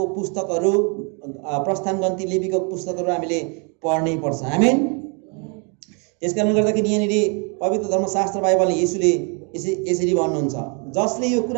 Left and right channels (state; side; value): quieter; left; 36.1 dB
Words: पुस्तकहरू, प्रस्थान गन्ती लेवीको पुस्तकहरू हामीले पढ्नै पर्छ। आमेन। त्यसकारणले गर्दाखेरि यहाँनिर पवित्र धर्मशास्त्र बाइबलले येशूले यसरी भन्नुहुन्छ, जसले यो